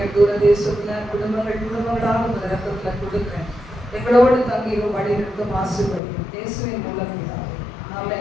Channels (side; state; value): right; drops out; at 6.0 s